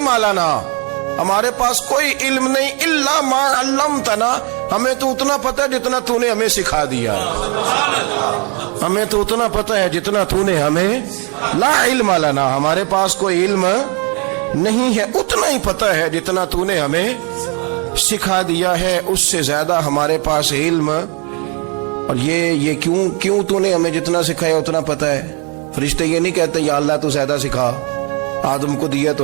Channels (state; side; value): quieter; left; 34.4 dB